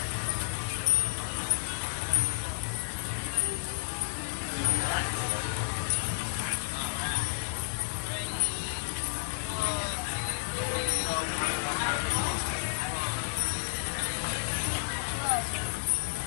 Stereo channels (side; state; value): right; silent; 57 dB below the other